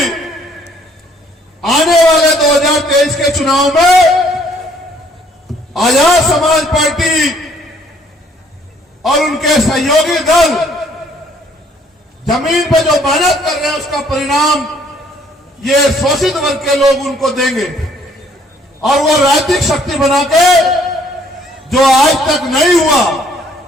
आने वाले 2023 के चुनाव में आजाद समाज पार्टी और उनके सहयोगी दल जमीन पे जो मेहनत कर रहे हैं उसका परिणाम ये शोषित वर्ग के लोग उनको देंगे और वो राजनीतिक शक्ति बना के जो आज तक नहीं हुआ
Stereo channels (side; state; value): both; normal; correlation 0.62